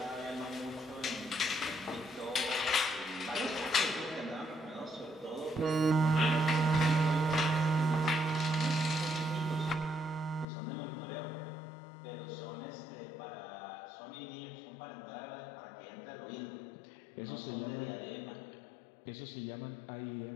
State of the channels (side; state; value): right; drops out; at 10.5 s